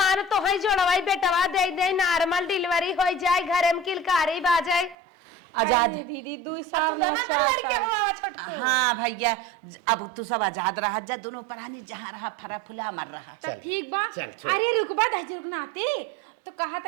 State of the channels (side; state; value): left; drops out; at 5.0 s